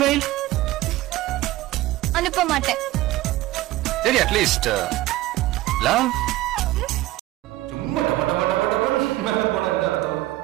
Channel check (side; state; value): left; quieter; 16.8 dB